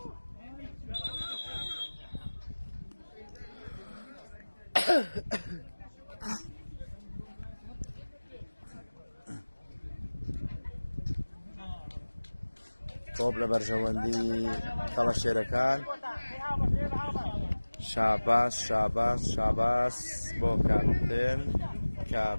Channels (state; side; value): inverted; both; correlation -1.00